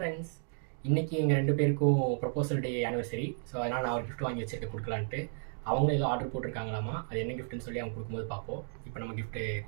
இன்றைக்கி எங்கள் 2 பேருக்கும் ப்ரொபோசல் டே ஆனிவர்சரி. ஸோ அதனால் நான் ஒரு கிஃப்ட் வாங்கி வச்சுருக்கேன் கொடுக்கலான்ட்டு. அவங்களும் ஏதோ ஆர்டர் போட்டிருக்காங்களாமா. அது என்ன கிஃப்ட்டுன்னு சொல்லி அவங்க கொடுக்கும்போது பார்ப்போம். இப்போ நம்ம கிஃப்ட்டு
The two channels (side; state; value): left; silent; digital silence